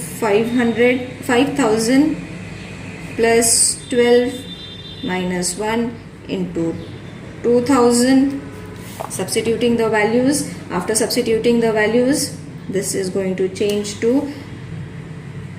plus 12 minus 1 into 2,000. Substituting the values. After substituting the values, this is going to change to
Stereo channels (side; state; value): both; identical; correlation 1.00